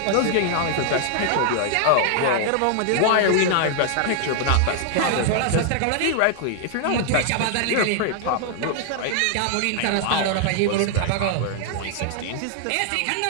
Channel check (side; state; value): both; different; correlation 0.00